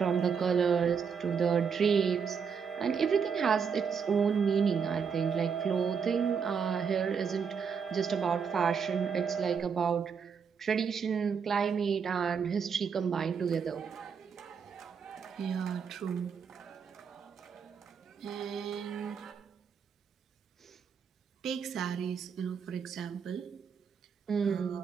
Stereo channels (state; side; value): quieter; left; 6.4 dB